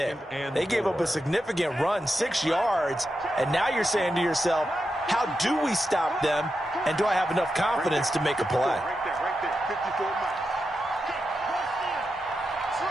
They gave up a significant run, 6 yards, and now you're saying to yourself, how do we stop them, and do I have enough confidence to make a play? Right there, 54 miles.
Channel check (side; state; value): both; normal; correlation 0.88